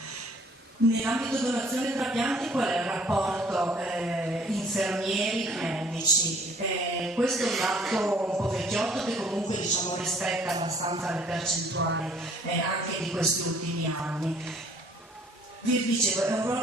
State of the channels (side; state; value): both; normal; correlation 0.57